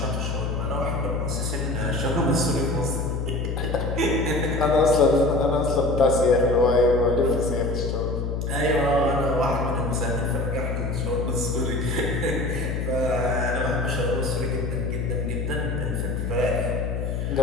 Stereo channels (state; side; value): noise; left; hum, 2 dB below the sound